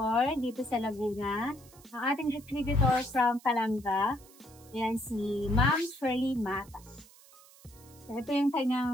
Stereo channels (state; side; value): noise; right; hiss, 24 dB below the sound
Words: dito sa Laguna. Ang ating distributor from Calanga. Yan si Ma'am Shirley Mata. So, ito yung